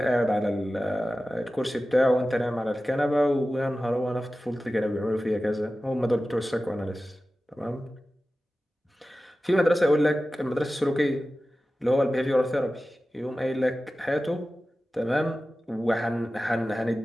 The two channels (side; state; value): both; normal; correlation 0.95